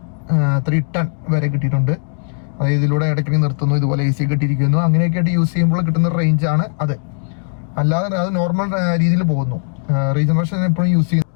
310 വരെ കിട്ടിയിട്ടുണ്ട്. അതായത് ഇതിലൂടെ ഇടയ്ക്ക് നിർത്തുന്നു, ഇതുപോലെ AC കിട്ടിയിരിക്കുന്നു, അങ്ങനെയൊക്കെ ആയിട്ട് യൂസ് ചെയ്യുമ്പോൾ കിട്ടുന്ന റേഞ്ച് ആണ് അത്. അല്ലാതെ അത് നോർമൽ രീതിയിൽ പോകുന്നു. റീജനറേഷൻ എപ്പോഴും യൂസ് ചെയ്യുന്നു.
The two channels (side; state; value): right; silent; digital silence